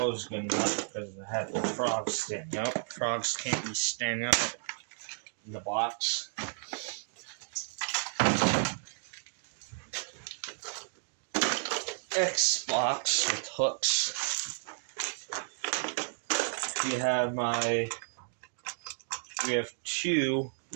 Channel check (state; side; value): silent; left; digital silence